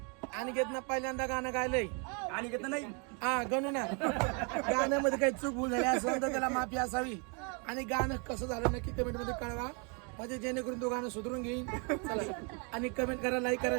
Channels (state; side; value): quieter; left; 35.5 dB